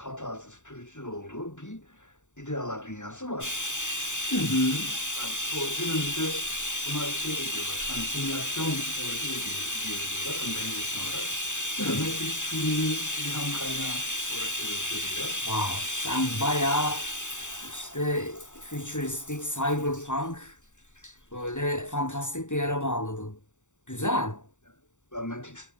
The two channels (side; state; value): right; late; 0.85 ms